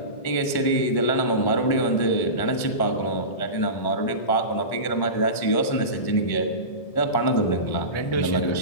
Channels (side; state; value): right; late; 1.1 ms